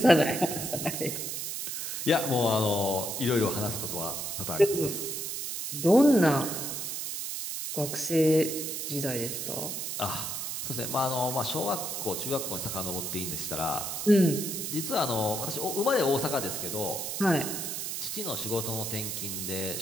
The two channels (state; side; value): noise; right; hiss, 4 dB below the sound